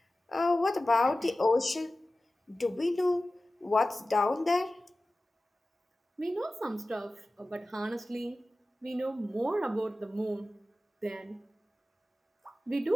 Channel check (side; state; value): both; normal; correlation 0.96